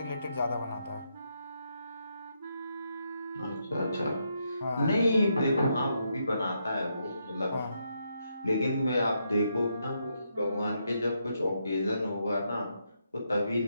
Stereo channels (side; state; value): both; inverted; correlation -0.80